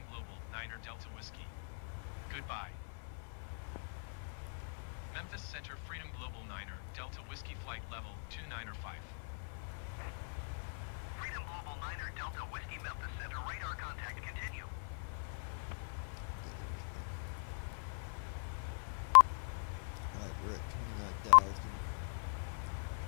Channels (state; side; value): silent; right; digital silence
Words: Global, Niner Delta Whiskey. Goodbye. Memphis Center Freedom Global Niner, Delta Whiskey Flight Level 295. Freedom Global Niner Delta Whiskey Memphis Center, radar contact continue. Alright, we're at 29,000.